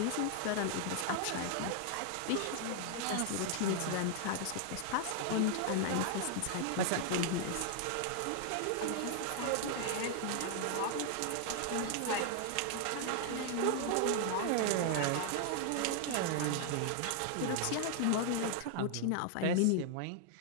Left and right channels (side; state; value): both; different; correlation 0.00